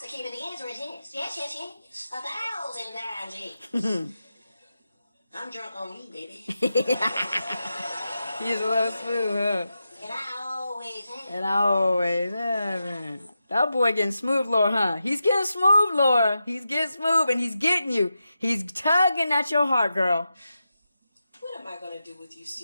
the answer is yes. Yes. 1,000 times yes. I'm drunk on you, baby. He's a little smooth, huh? And I always have. And I always have. That boy getting smooth, Laura, huh? He's getting smooth, Laura. He's getting smooth, and he's getting you. He's tugging at your heart, girl. What am I going to do with you,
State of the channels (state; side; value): inverted; both; correlation -0.89